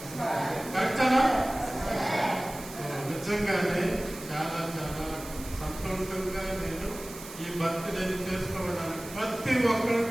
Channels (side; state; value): right; noise; hiss, 14 dB below the sound